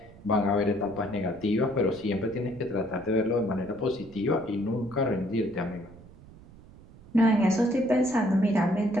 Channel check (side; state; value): right; noise; rumble, 21 dB below the sound